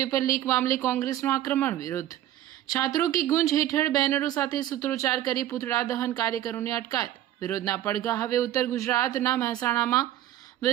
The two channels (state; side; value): quieter; left; 12.9 dB